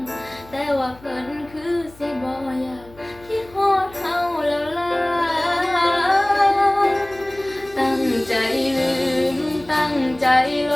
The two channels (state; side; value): noise; left; hum, 23 dB below the sound